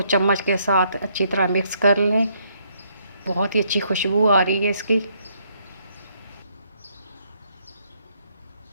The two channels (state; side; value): inverted; both; correlation -0.71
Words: चम्मच के साथ अच्छी तरह मिक्स कर लें। बहुत ही अच्छी खुशबू आ रही है इसकी।